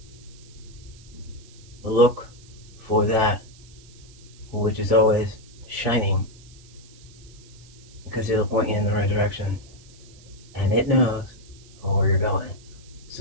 look for that which is always shining, because it'll point you in the right direction, and it knows where you're going.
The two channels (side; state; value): right; noise; hiss, 24 dB below the sound